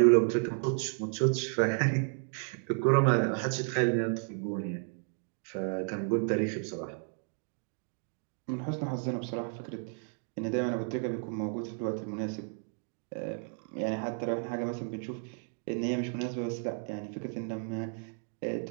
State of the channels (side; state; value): left; silent; 56 dB below the other